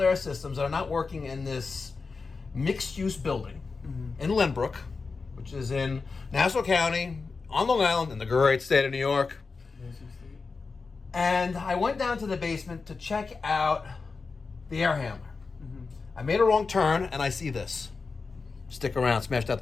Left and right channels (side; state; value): right; quieter; 4.4 dB